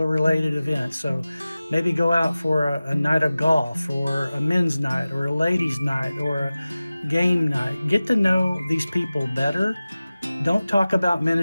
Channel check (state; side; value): inverted; both; correlation -0.97